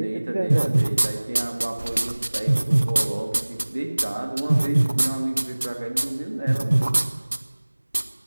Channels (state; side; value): inverted; both; correlation -1.00